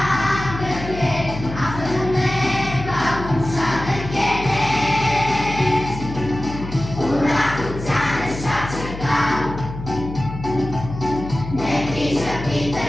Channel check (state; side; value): noise; left; hum, 10 dB below the sound